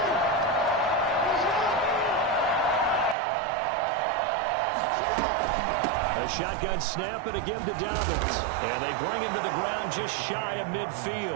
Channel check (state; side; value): drops out; left; at 3.2 s